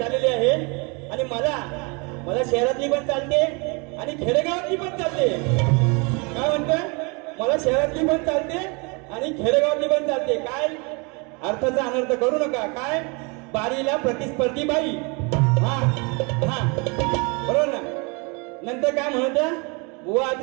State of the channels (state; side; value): quieter; left; 30.8 dB